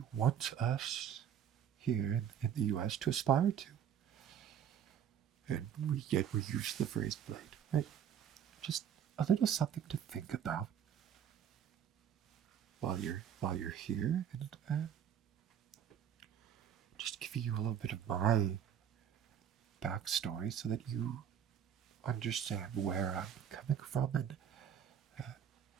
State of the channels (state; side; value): quieter; left; 9.0 dB